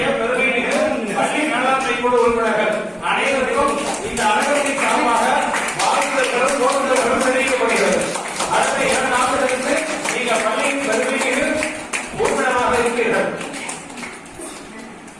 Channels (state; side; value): identical; both; correlation 1.00